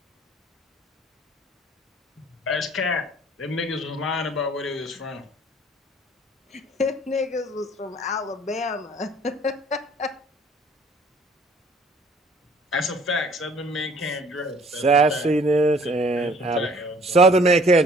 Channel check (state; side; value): normal; both; correlation 0.55